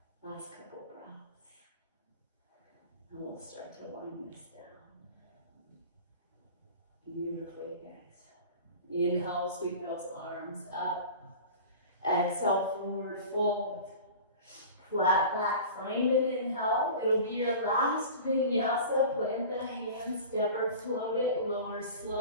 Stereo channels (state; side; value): inverted; both; correlation -0.38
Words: Last couple breaths. And we'll start to wind this down. Beautifully, guys. Inhale, sweep those arms up. Exhale, forward fold. Flat back, find an inhale. It'll be your last vinyasa. Plant the hands, step or float it, lower